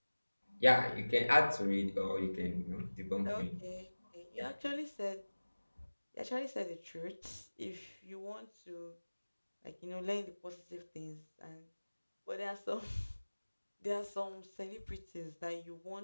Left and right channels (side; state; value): both; inverted; correlation -1.00